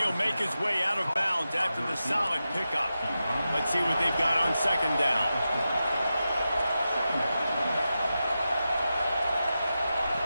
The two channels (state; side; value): inverted; both; correlation -0.91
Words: make his way out of bounds after the solid pickup. Let's see what they've got on second down.